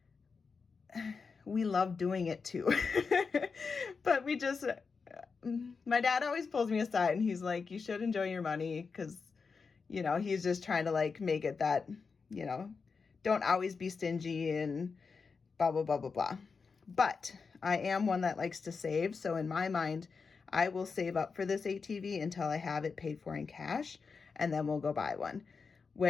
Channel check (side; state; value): right; quieter; 5.1 dB